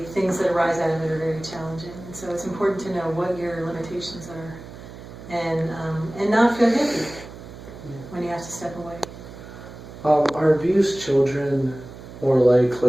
things that arise out of it are very challenging. And so it's important to know what your limitations are, and not feel guilty when you have to step away. Are abused children more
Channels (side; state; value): right; noise; hum, 15 dB below the sound